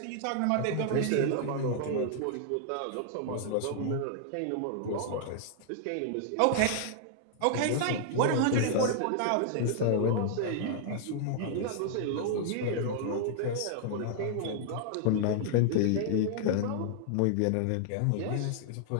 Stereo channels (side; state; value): both; different; correlation -0.01